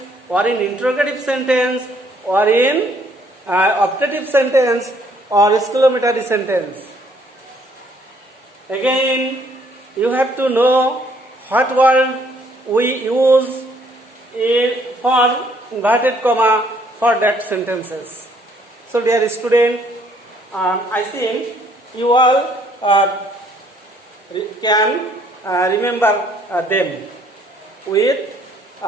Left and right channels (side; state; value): both; normal; correlation 0.64